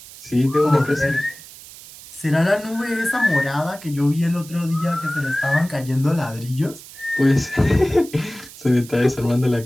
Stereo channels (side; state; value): right; noise; hiss, 18 dB below the sound